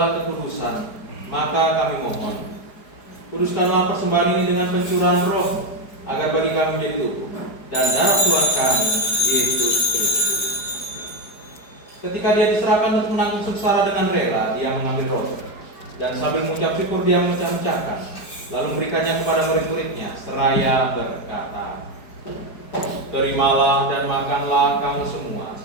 kekudusan. Maka kami mohon, kuduskanlah persembahan ini dengan pencurahan Roh, agar bagi kami menjadi tubuh dan darah Tuhan kami, Yesus Kristus. Ketika Dia diserahkan untuk menanggung sengsara dengan rela, Dia mengambil roti, dan sambil mengucap syukur Dia memecah-mecahkan, lalu memberikannya kepada murid-muridnya, seraya berkata, "Terimalah dan makanlah kamu semua.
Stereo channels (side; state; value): right; late; 4.8 ms